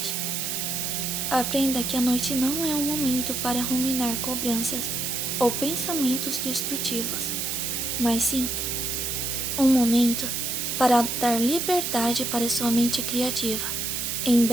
Aprenda que a noite não é um momento para ruminar cobranças ou pensamentos destrutivos, mas sim um momento para dar liberdade para sua mente criativa em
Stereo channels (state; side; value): noise; right; hiss, 1 dB below the sound